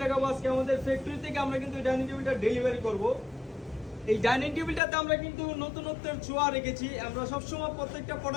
দেখাবো আজকে আমাদের ফ্যাক্টরি থেকে। আমরা কিন্তু এই ডাইনিং টেবিলটা ডেলিভারি করব। এই ডাইনিং টেবিলটাতে আমরা কিন্তু নতুনত্বের ছোঁয়া রেখেছি। আমরা সবসময় প্রত্যেকটা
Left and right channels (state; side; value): drops out; right; at 4.8 s